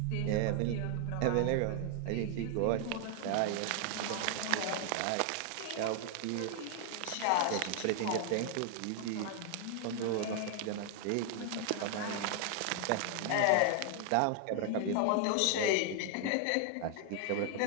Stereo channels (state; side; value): different; both; correlation 0.00